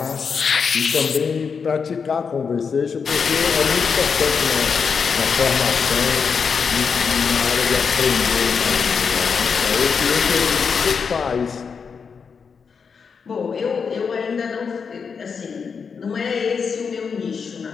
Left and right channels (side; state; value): right; quieter; 5.9 dB